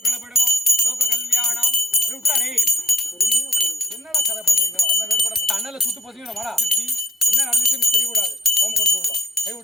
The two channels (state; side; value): normal; both; correlation 0.54